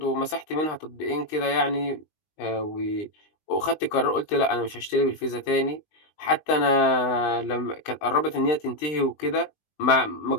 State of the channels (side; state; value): right; late; 20 ms